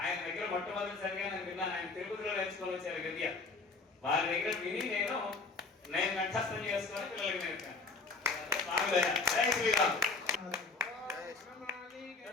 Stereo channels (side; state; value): right; quieter; 3.9 dB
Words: దగ్గర మొట్టమొదటిసారిగా నేను విన్నాను. ఆయన తిరుపతిలో నేర్చుకొని వచ్చారు గద్య. వారి దగ్గర విని నేను కంఠస్థం చేసుకొని పిల్లలకి నేర్పాను. జై శ్రీరామ్.